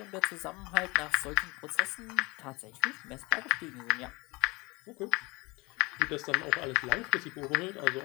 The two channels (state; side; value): quieter; right; 24.9 dB